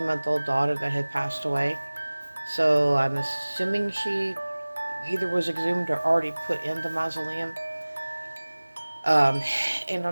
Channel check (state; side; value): inverted; both; correlation -1.00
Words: daughter that had passed away. So I'm assuming she either was exhumed or already put in the mausoleum. Um, and